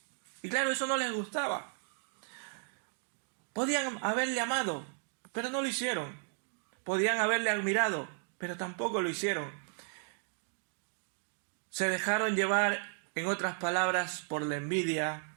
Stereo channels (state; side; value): silent; left; 55 dB below the other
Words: Y claro, eso no les gustaba. Podían haberle amado, pero no lo hicieron. Podían haberle admirado, pero tampoco lo hicieron. Se dejaron llevar, en otras palabras, por la envidia